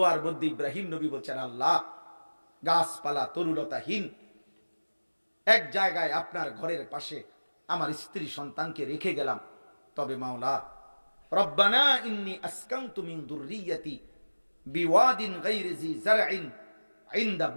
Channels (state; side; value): inverted; both; correlation -1.00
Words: মধ্যে ইব্রাহিম নবী বলছেন, আল্লাহ, গাছপালা তরুলতাহীন এক জায়গায় আপনার ঘরের পাশে আমার স্ত্রী সন্তানকে রেখে গেলাম, তবে মাওলা, রব্বানা ইন্নী আসকানতু মিন যুররিয়্যাতি বিওয়াদিন গায়রি জি যারইন ইনদা